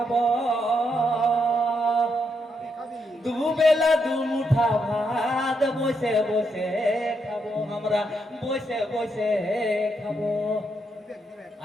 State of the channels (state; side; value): normal; both; correlation 0.79